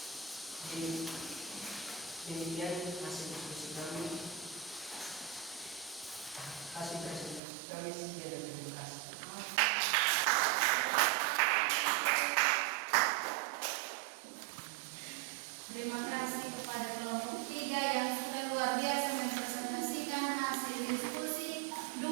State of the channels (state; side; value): drops out; left; at 7.4 s